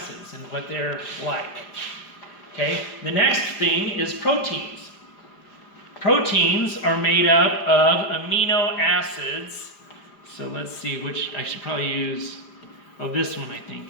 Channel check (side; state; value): right; late; 4.9 ms